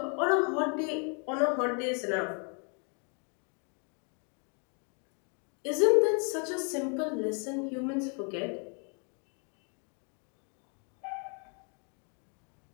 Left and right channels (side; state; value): right; quieter; 38.3 dB